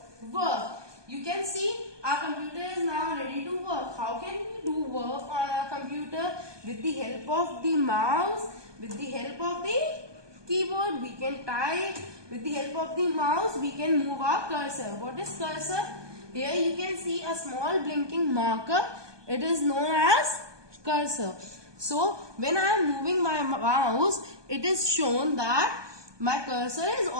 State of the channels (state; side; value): late; left; 1.2 ms